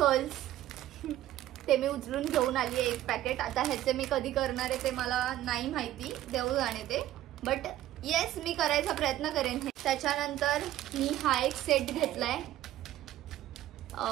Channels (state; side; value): quieter; left; 13.8 dB